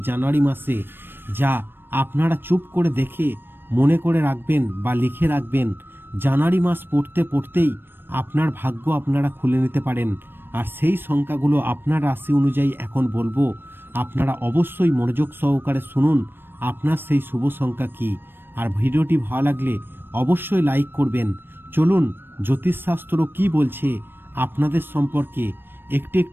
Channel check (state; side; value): late; left; 0.098 ms